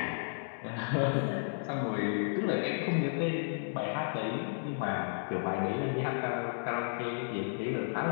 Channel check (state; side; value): silent; right; digital silence